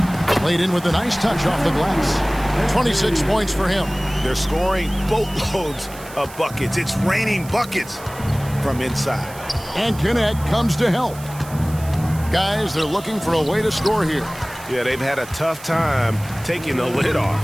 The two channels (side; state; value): right; noise; hiss, 18 dB below the sound